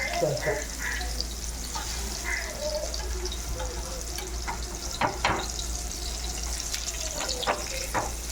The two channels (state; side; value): identical; both; correlation 1.00